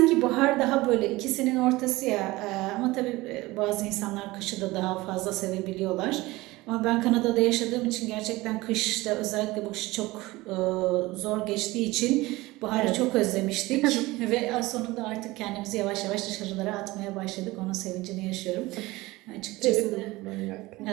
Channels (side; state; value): left; quieter; 20.1 dB